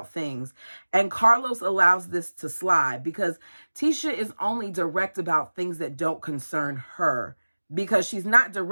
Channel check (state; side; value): inverted; both; correlation -1.00